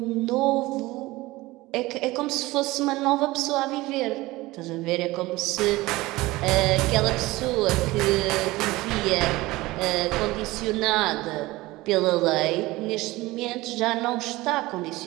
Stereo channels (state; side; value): quieter; left; 19.6 dB